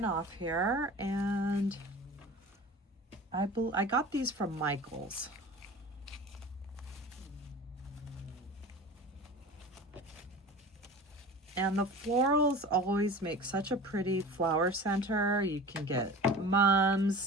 off here, and I got these from Michael's. And the florals always make such a pretty flower center. You can get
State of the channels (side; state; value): both; normal; correlation 0.37